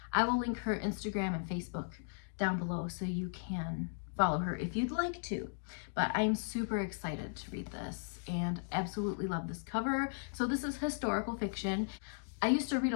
I will link her Instagram and Facebook down below so you can follow her if you'd like to. But I'm super excited to read this and absolutely love this cover. So this is historical fiction. I used to read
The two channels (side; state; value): right; silent; digital silence